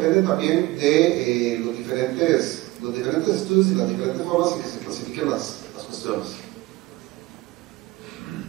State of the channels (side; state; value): left; quieter; 19.6 dB